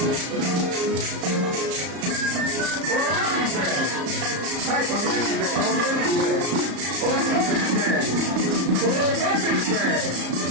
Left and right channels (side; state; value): left; late; 34 ms